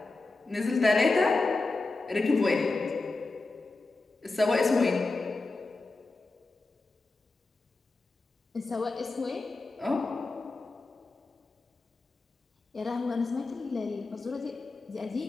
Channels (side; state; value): right; quieter; 3.4 dB